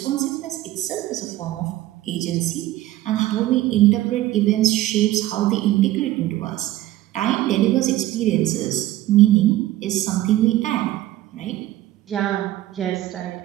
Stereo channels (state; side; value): quieter; left; 15.2 dB